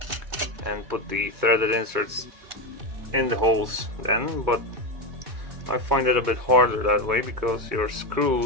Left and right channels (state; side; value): late; left; 2.3 ms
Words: and put the threaded inserts in the holes then, but I find it a bit harder that way because your